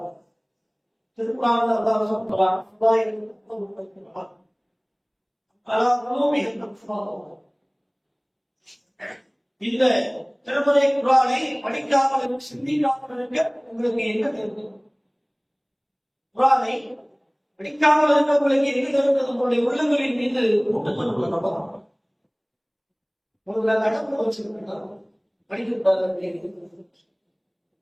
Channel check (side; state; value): both; identical; correlation 1.00